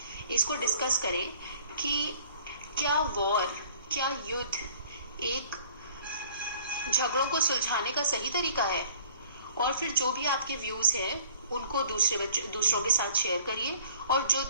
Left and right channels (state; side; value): inverted; both; correlation -0.51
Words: इसको डिस्कस करें कि क्या वॉर, क्या युद्ध एक झगड़ों को सुलझाने का सही तरीका है, और फिर जो भी आपके व्यूज हैं उनको दूसरों के साथ शेयर करिए, और जो